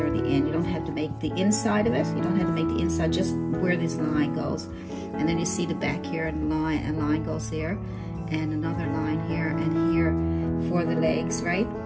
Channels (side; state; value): both; identical; correlation 1.00